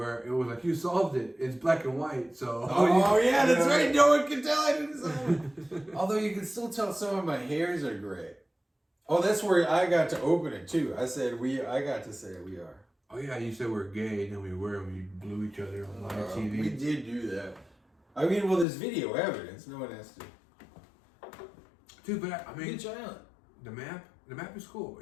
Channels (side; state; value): right; drops out; at 18.7 s